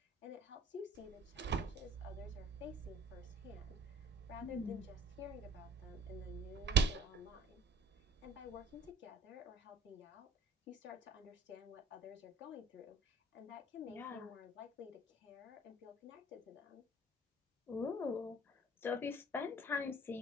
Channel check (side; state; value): both; normal; correlation 0.52